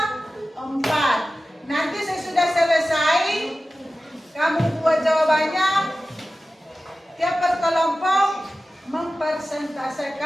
4. Nanti sesudah selesai, kamu buat jawabannya. Tiap kelompok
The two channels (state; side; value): normal; both; correlation 0.95